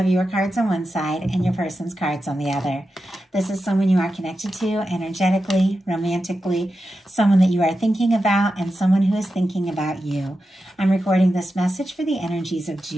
your cards on one side and your person's cards on the other. This is someone you are connected to energetically, romantically, someone that you are thinking about, and someone who is thinking about you. I'm recording this message for the energies of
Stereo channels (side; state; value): both; normal; correlation 0.90